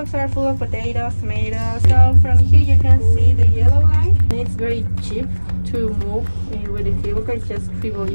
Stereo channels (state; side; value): inverted; both; correlation -1.00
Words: are full of potatoes, tomatoes. So from here you can see the yellow line. It's very cheap to move with the cable car. It's just 3